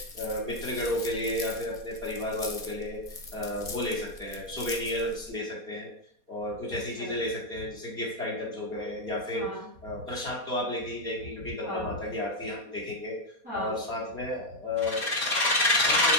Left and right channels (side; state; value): left; late; 4.2 ms